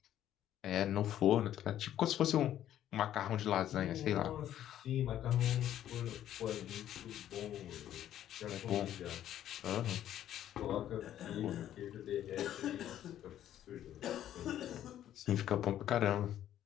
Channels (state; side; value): quieter; right; 11.5 dB